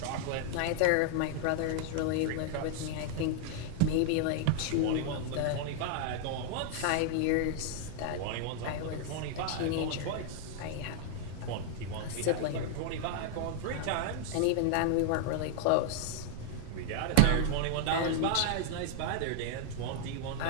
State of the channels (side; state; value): both; different; correlation 0.00